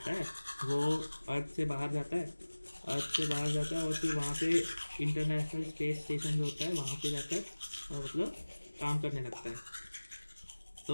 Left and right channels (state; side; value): inverted; both; correlation -1.00